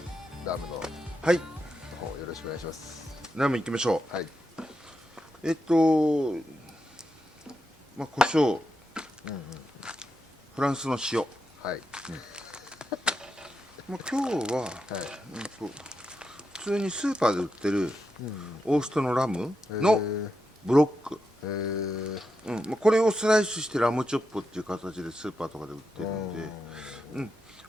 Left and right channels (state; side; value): normal; both; correlation 0.86